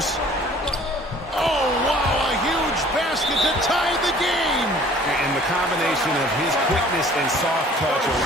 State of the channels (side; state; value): both; normal; correlation 0.52